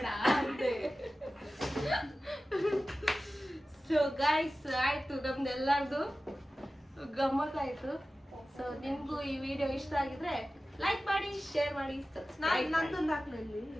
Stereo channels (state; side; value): normal; both; correlation 0.95